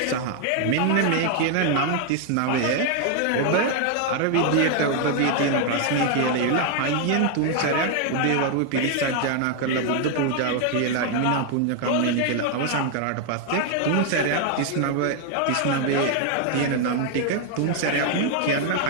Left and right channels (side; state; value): both; different; correlation 0.00